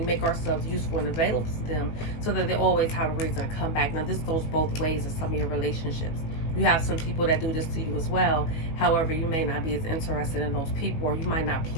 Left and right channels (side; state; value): right; late; 19 ms